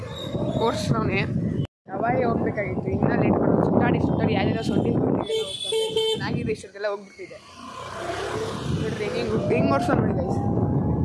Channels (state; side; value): identical; both; correlation 1.00